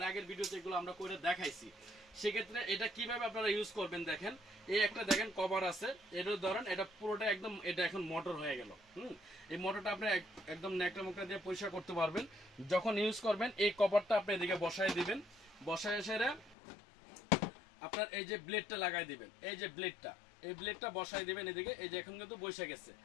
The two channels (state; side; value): drops out; right; at 16.6 s